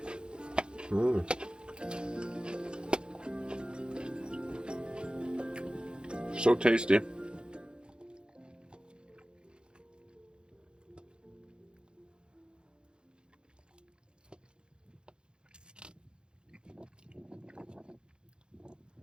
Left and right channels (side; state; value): left; late; 0.051 ms